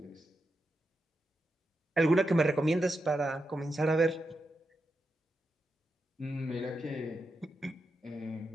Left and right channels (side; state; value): both; normal; correlation 0.87